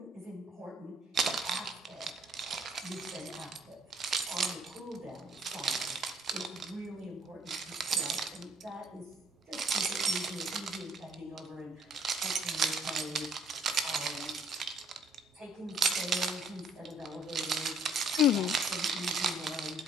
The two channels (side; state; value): both; normal; correlation 0.61